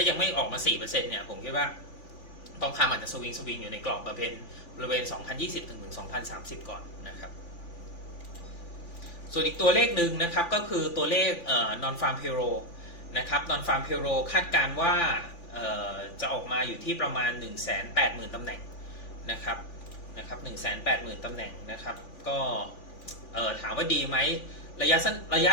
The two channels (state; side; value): late; right; 5.9 ms